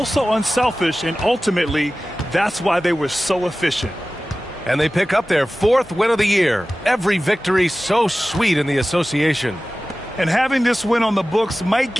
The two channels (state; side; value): normal; both; correlation 0.96